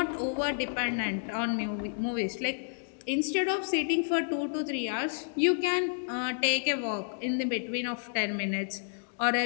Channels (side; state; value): right; silent; digital silence